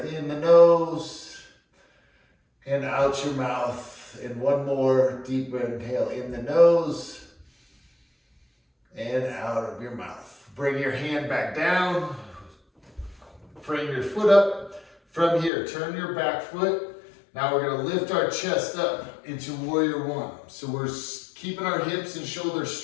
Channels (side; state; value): right; drops out; at 15.5 s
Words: in the nose. And out your mouth. And one more deep inhale in the nose. And out of your mouth. Bring your hand back down. Frame your foot up. From here, turn your back foot. Now we're going to lift our chest up into Warrior One. So we're keeping our hips and shoulders